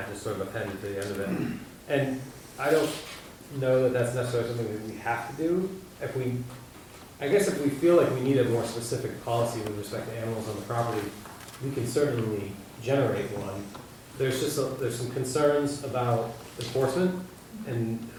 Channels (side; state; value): both; identical; correlation 1.00